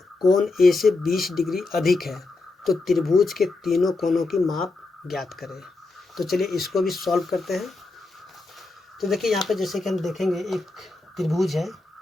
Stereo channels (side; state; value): right; quieter; 3.4 dB